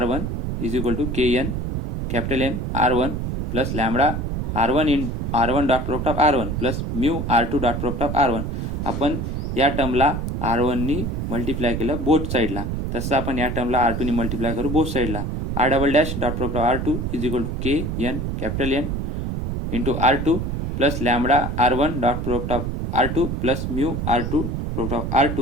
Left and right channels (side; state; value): right; noise; rumble, 3 dB below the sound